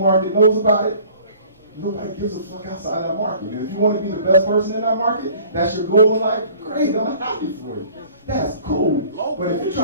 knows about it, nobody gives a fuck outside that market. And if you want to be the best person in that market, that's your goal in life, great, I'm happy for you. That's cool. But if you're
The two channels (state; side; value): inverted; both; correlation -0.51